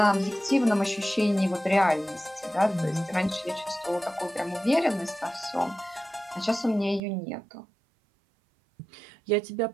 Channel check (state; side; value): drops out; left; at 7.0 s